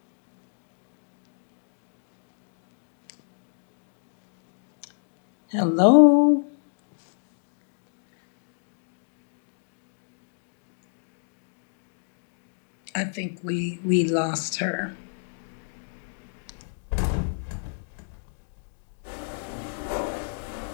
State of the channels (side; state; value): right; silent; digital silence